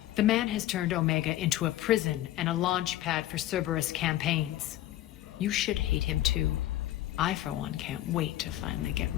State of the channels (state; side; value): quieter; right; 14.3 dB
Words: The man has turned Omega into a prison and a launch pad for Cerberus campaigns. You should hate him too. I, for one, can't wait to finally get